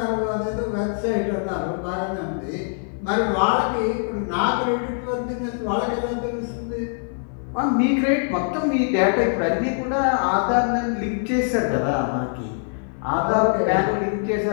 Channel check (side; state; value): right; silent; 63 dB below the other